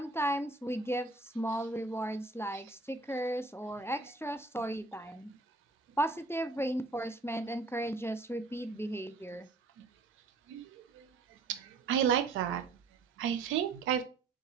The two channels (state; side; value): quieter; left; 3.5 dB